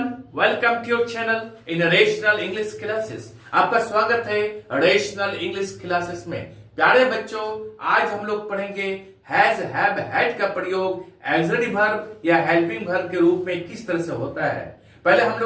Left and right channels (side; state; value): both; identical; correlation 1.00